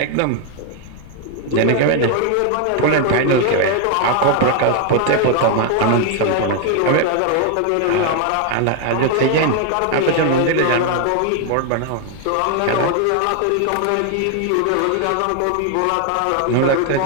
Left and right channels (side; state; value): both; different; correlation 0.00